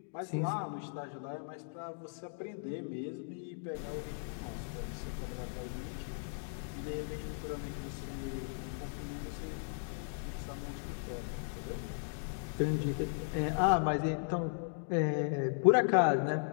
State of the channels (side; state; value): right; silent; digital silence